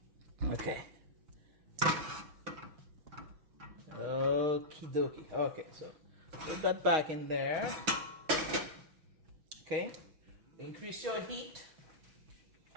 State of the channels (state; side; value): late; left; 6.4 ms